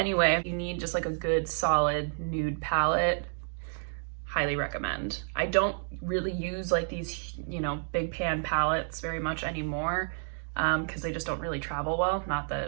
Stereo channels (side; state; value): left; silent; digital silence